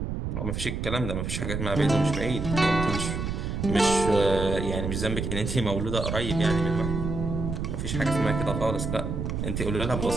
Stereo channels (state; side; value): noise; right; rumble, 3 dB below the sound